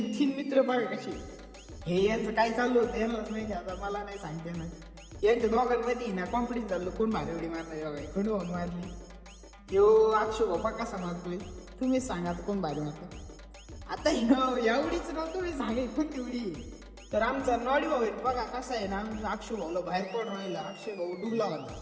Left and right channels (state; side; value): identical; both; correlation 1.00